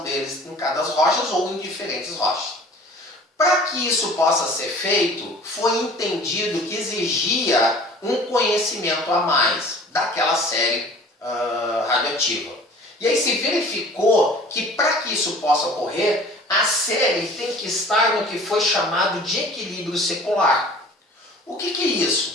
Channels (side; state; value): both; normal; correlation 0.47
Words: deles em cada rochas ou em diferentes rochas. Para que isso possa ser feito, foi entendido que exigia um conhecimento a mais daquela série radioativa. E aí se verificou que para que isso possa ocorrer, a série tem que estar no que foi chamado de equilíbrio secular. O que é